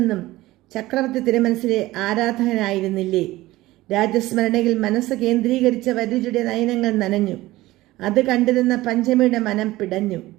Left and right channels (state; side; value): quieter; left; 17.7 dB